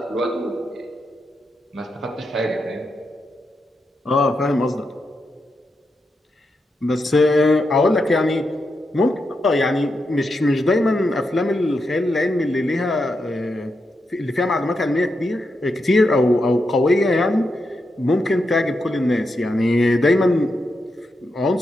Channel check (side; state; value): both; normal; correlation 0.85